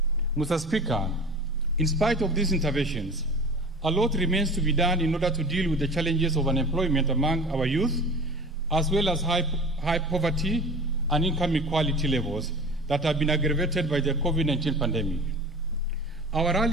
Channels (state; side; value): normal; both; correlation 0.38